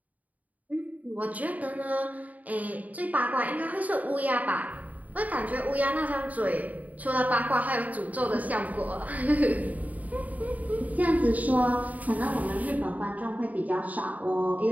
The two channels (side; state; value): left; late; 0.074 ms